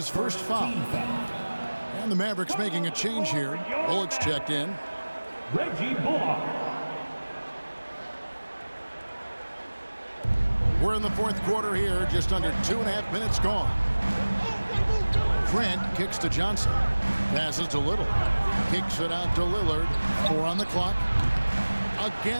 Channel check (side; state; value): both; inverted; correlation -1.00